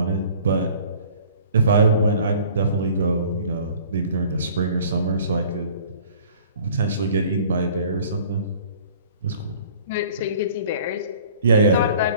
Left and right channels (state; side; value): inverted; both; correlation -0.51